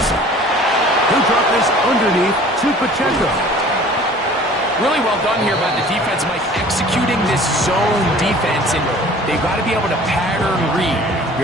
stop. Who dropped this underneath to Pacheco? Really well done here by the defense, Mike, executing this zone defense, and they've got to be able to pattern read.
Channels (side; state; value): both; normal; correlation 0.47